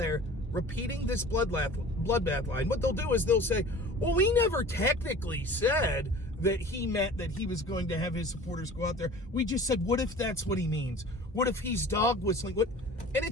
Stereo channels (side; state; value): both; normal; correlation 0.42